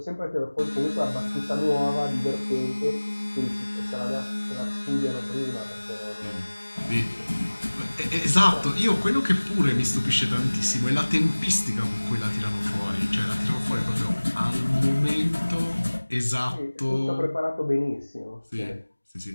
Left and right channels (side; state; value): both; inverted; correlation -1.00